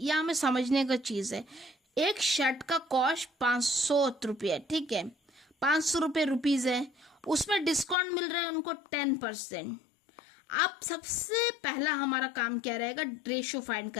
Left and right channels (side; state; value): right; drops out; at 8.0 s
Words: हमें समझने का चीज है। एक शर्ट का कॉस्ट 500 रुपये, ठीक है, 500 रुपये रुपीज है, उसमें डिस्काउंट मिल रहा है उनको 10%। आप सबसे पहला हमारा काम क्या रहेगा, रेशियो फाइंड